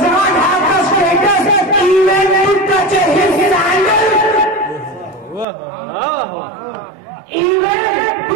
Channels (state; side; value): drops out; left; at 5.5 s